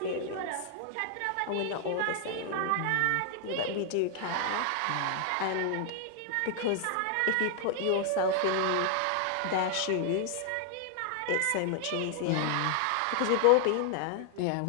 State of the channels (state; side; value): different; both; correlation 0.00